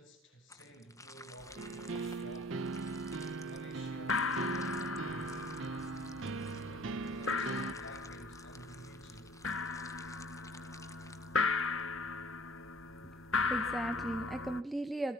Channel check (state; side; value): normal; both; correlation 0.52